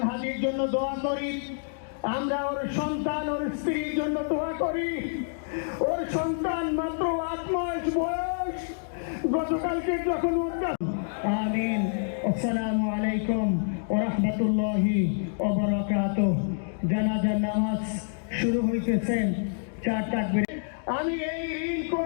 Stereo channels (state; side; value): silent; right; digital silence